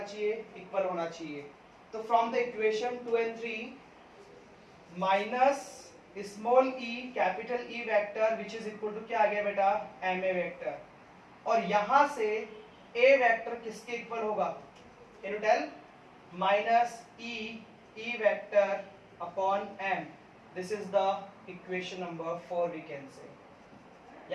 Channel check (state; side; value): identical; both; correlation 1.00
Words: equal होना चाहिए. तो from the equation 2 and 3 minus small e capital E vector which is equal to क्या आ गया बेटा, ma वेक्टर, और यहां से a वेक्टर किसके इक्वल होगा, can you tell, minus e vector upon m. This is the equation number 4 we can say.